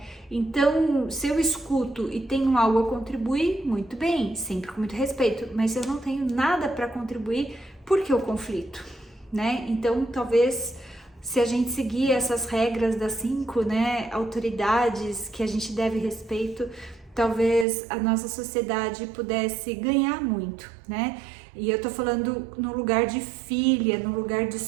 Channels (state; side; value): drops out; left; at 17.7 s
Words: Então, se eu escuto e tenho algo a contribuir, muito bem, sempre com muito respeito, mas se eu não tenho nada para contribuir, por que o conflito, né? Então, talvez, se a gente seguir essas regras das 5, né, autoridades que a gente deve respeito, talvez a nossa sociedade pudesse ganhar muito, né? E eu tô falando no lugar de filha, no lugar de